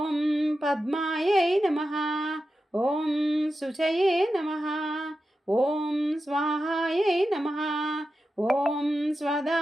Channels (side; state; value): both; normal; correlation 0.91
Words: పద్మాయై నమః, ఓం శుచయే నమః, ఓం స్వాహాయై నమః, ఓం